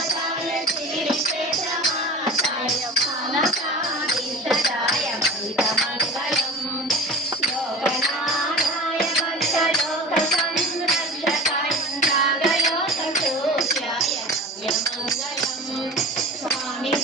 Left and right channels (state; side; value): normal; both; correlation 0.35